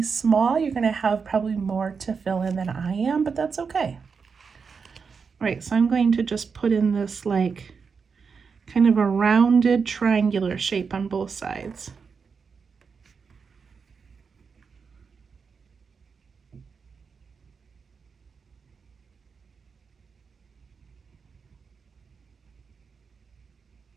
small, you're going to have probably more to fill in than I am, but that's okay. All right, so I'm going to just put in this like kind of a rounded triangular shape on both sides.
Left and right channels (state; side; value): quieter; left; 5.6 dB